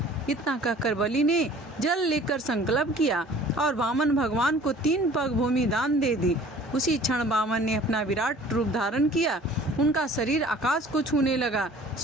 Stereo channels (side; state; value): both; normal; correlation 0.49